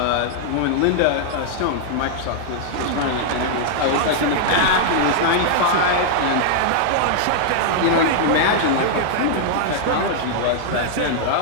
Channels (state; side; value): different; both; correlation -0.01